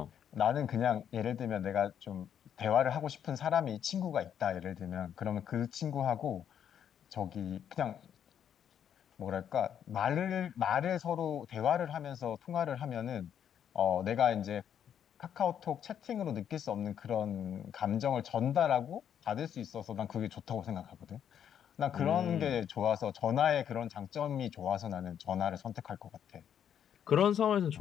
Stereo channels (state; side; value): quieter; right; 9.1 dB